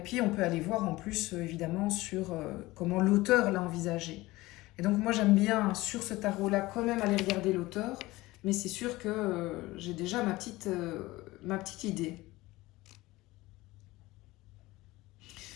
on peut aller voir en plus, évidemment, sur comment l'auteur l'a envisagé. Et donc, moi, j'aime bien, sur ce tarot-là, quand même aller regarder l'auteur, mais c'est sûr que j'ai déjà ma petite idée.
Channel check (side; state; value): right; quieter; 19.4 dB